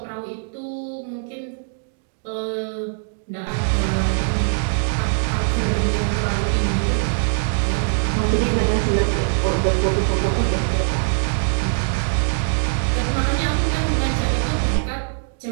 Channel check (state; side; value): silent; left; digital silence